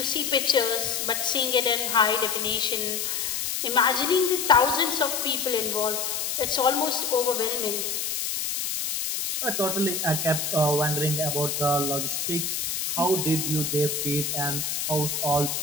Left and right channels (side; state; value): left; noise; hiss, 2 dB below the sound